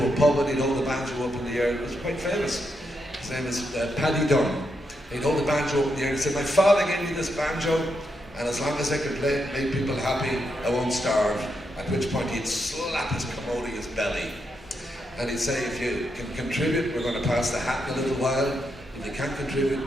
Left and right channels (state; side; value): normal; both; correlation 0.82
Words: a pub and he'd hold the banjo up in the air. It was quite famous. His name is Paddy Dunn. He'd hold the banjo up in the air and he'd say, "My father gave me this banjo, and as long as I can play it, make people happy, I won't starve." At which point he'd slap his commodious belly. And he'd say, "If you can contribute, we're going to pass the hat in a little while. If you can't contribute,